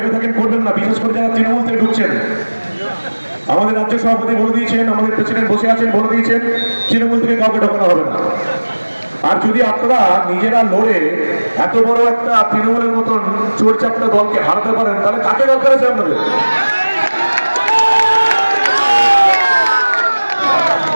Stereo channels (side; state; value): both; inverted; correlation -1.00